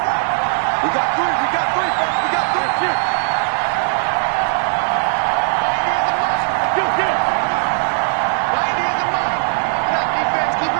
We got three. We got three. We got three.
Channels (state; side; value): silent; left; digital silence